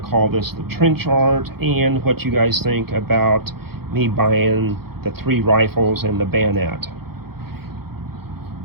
call this the trench art, and what you guys think about me buying the 3 rifles and the bayonet.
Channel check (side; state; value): left; late; 0.95 ms